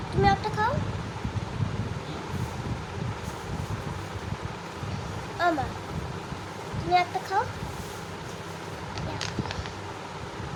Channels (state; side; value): identical; both; correlation 1.00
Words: তুমি একটা খাও, আমার তুমি একটা খাও।